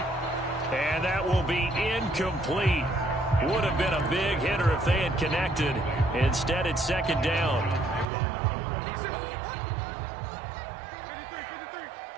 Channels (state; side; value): drops out; left; at 8.1 s